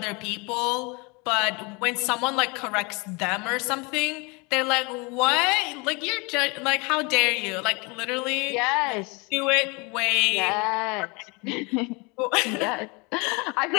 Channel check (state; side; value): quieter; right; 28.7 dB